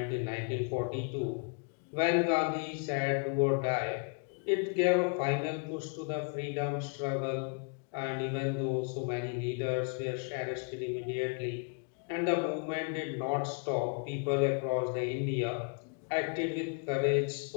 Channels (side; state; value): right; quieter; 38.5 dB